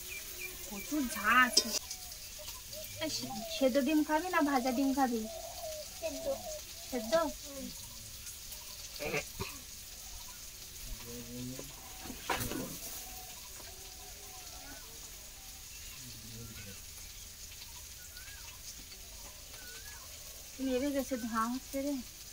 প্রচুর ঝাঁজ। সেদ্ধ ডিম খাবি না ভাজা ডিম খাবি? সেদ্ধ। নেড়ে গেছে, ধোঁয়া হচ্ছে রে।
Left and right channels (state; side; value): identical; both; correlation 1.00